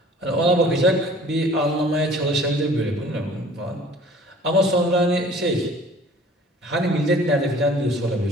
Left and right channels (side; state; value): both; normal; correlation 0.50